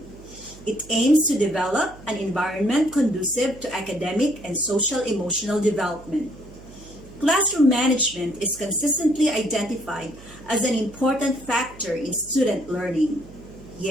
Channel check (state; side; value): noise; right; hum, 20 dB below the sound